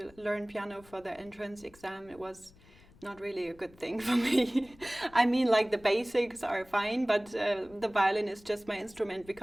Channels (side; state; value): left; noise; rumble, 25 dB below the sound